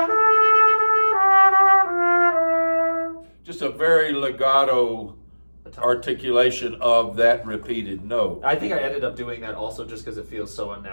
Just a very legato articulation of that repeated note. I think I ended up doing that also just because it feels so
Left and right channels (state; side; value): inverted; both; correlation -1.00